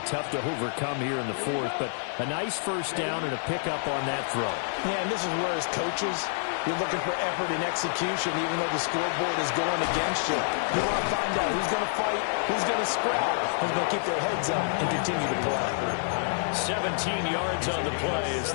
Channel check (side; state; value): right; silent; 59 dB below the other